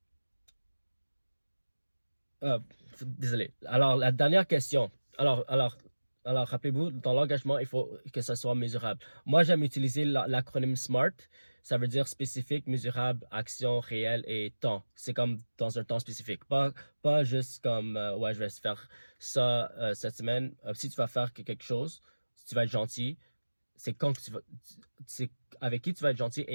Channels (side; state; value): both; inverted; correlation -1.00